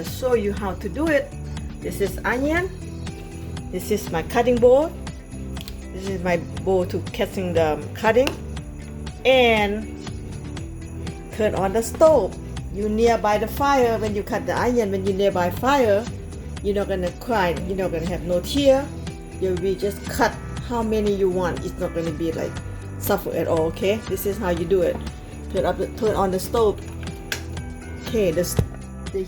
show you how to do it. This is onion. This is my cutting board. This is my bowl to catching the cutting. And turn on the stove. You nearby the fire when you cut the onion. When you nearby fire, you're not gonna cry. You're not gonna have no tear. You'll be just cut how many you want. It's not gonna be like suffer at all. Okay, this is how you do it. Turn on the stove. Okay, the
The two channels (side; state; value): both; identical; correlation 1.00